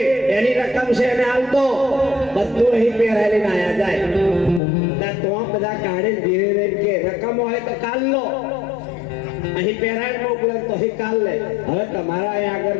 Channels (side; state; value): right; drops out; at 4.6 s